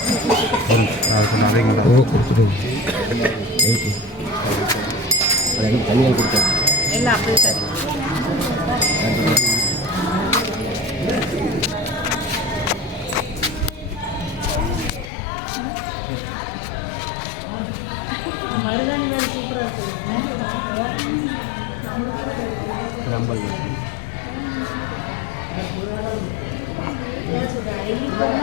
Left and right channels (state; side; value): drops out; right; at 15.1 s